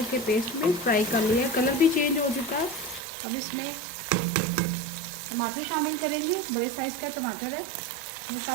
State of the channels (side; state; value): left; drops out; at 3.0 s